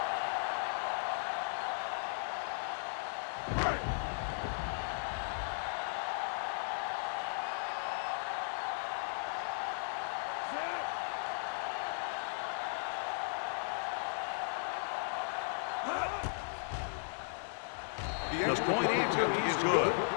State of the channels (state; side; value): silent; right; digital silence